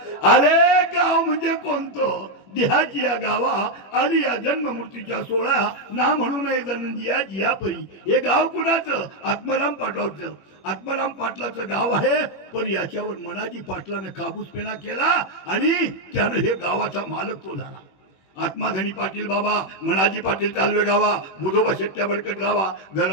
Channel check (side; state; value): right; late; 21 ms